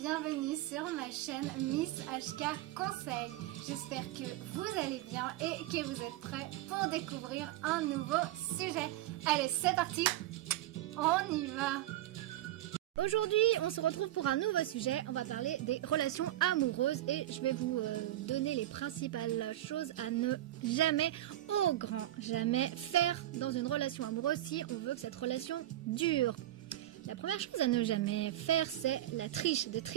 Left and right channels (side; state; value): left; quieter; 14.4 dB